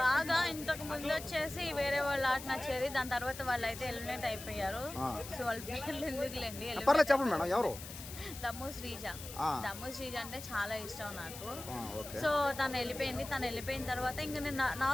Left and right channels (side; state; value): left; noise; hiss, 12 dB below the sound